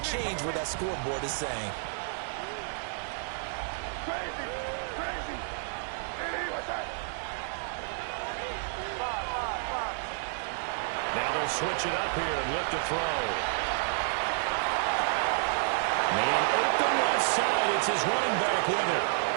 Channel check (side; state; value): left; silent; digital silence